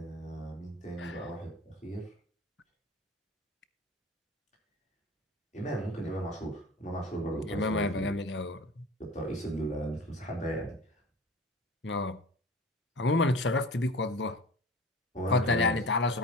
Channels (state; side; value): normal; both; correlation 0.37